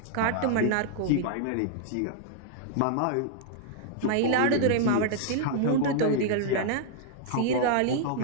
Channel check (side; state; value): both; different; correlation -0.01